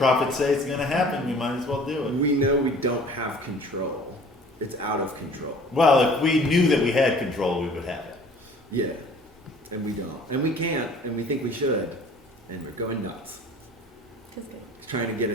say it's going to happen, we might as well do it. We know we don't have control. It's out of control. Well, if we knew that we had control, we would have it. Yeah. And we don't. And we can't. And we think we should. And we're going nuts. Trying to get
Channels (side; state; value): both; normal; correlation 0.49